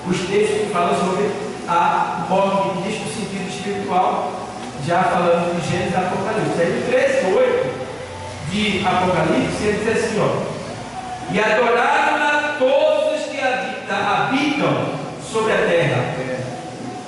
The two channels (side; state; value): both; identical; correlation 1.00